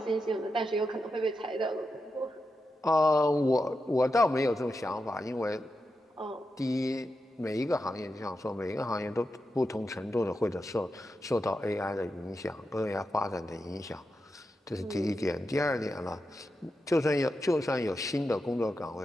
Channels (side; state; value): both; normal; correlation 0.88